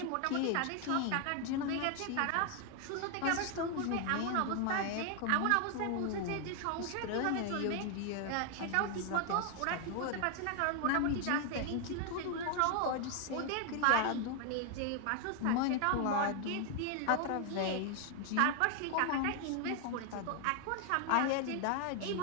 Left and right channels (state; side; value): different; both; correlation 0.00